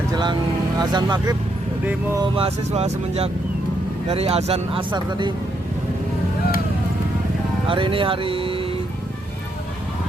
jelang azan maghrib, demo mahasiswa semenjak dari azan asar tadi. Hari ini hari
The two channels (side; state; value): both; normal; correlation 0.77